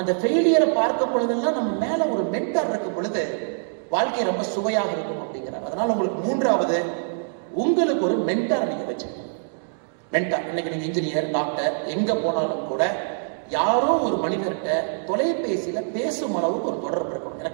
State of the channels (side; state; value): left; silent; digital silence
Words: இந்த ஃபெயிலியரை பார்க்கும் பொழுதெல்லாம் நம்ம மேல ஒரு மென்டார் இருக்கும் பொழுது வாழ்க்கை ரொம்ப சுவையாக இருக்கும் அப்படிங்கிறார். அதனால உங்களுக்கு 3வது உங்களுக்கு ஒரு மென்டார் நீங்க வச்சுக்கணும். மென்டார் இன்னைக்கு நீங்க இன்ஜினியர் டாக்டர் எங்க போனாலும் கூட யாரோ ஒரு மனிதர்கிட்ட தொலைபேசியில பேசும் அளவுக்கு ஒரு தொடர்பு இருக்கணும்.